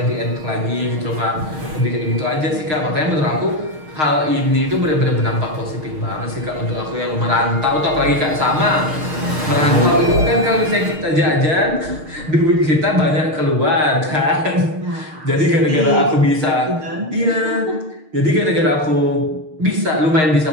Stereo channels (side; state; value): left; late; 6.5 ms